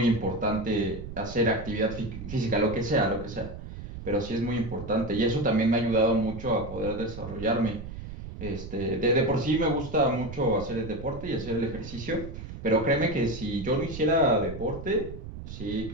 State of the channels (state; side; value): noise; right; rumble, 10 dB below the sound